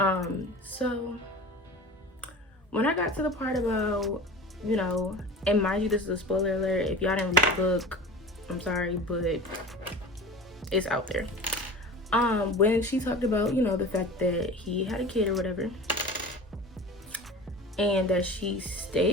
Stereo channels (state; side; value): normal; both; correlation 0.35